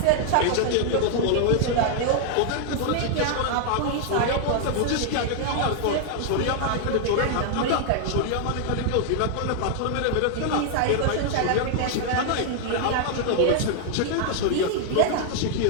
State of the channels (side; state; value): both; different; correlation 0.00